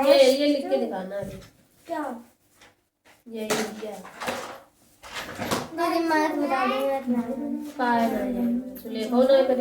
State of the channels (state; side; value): identical; both; correlation 1.00